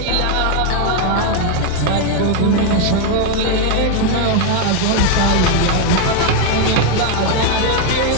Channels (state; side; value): different; both; correlation 0.01